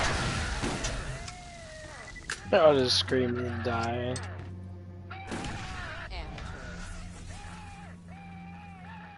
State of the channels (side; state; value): both; identical; correlation 1.00